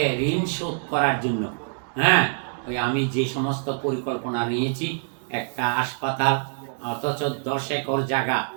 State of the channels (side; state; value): left; silent; digital silence